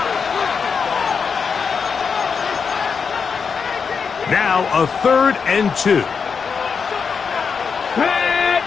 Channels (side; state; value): right; quieter; 5.8 dB